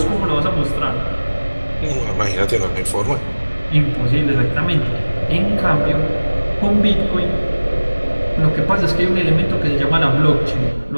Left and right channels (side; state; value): both; inverted; correlation -1.00